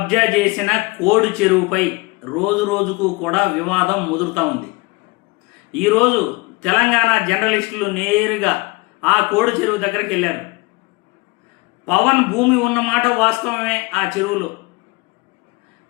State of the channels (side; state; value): right; quieter; 24.9 dB